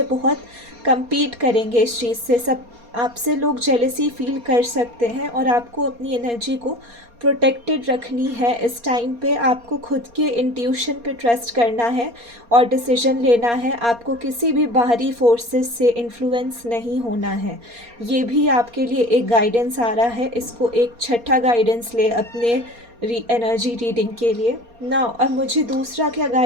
बहुत compete करेंगे इस चीज़ से, सब आपसे लोग जेलसी फील कर सकते हैं, और आपको अपनी एनर्जी को प्रोटेक्टेड रखनी है। इस टाइम पे आपको खुद के इंट्यूशन पे ट्रस्ट करना है और डिसीजन लेना है। आपको किसी भी बाहरी फोर्सेस से इन्फ्लुएंस नहीं होना है। ये भी आपके लिए एक गाइडेंस आ रहा है, इसको एक छठा गाइडेंस ले अपने एनर्जी रीडिंग के लिए ना। अब मुझे दूसरा क्या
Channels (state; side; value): late; left; 4.3 ms